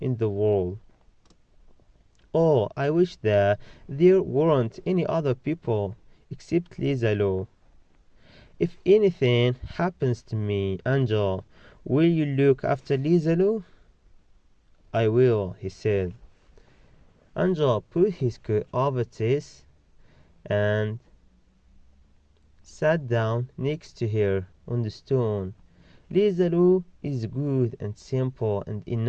the world. Oh, I wish that there weren't any other people except Lizalo. If anything happens to me, Angel, will you look after Lizalo?" I will, he said. Angel put his coat over Tess and sat down next to her on the stone. Lisa Lou is good and simple and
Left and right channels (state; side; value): identical; both; correlation 1.00